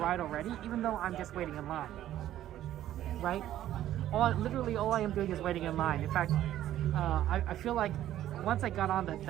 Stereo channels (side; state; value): left; quieter; 12.6 dB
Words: already, even though I'm just waiting in line. Right? Literally all I am doing is waiting in line. In fact, I feel like once I got on